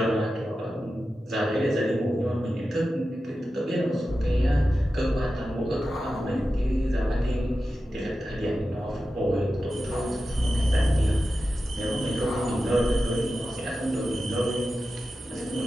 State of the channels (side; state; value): both; normal; correlation 0.92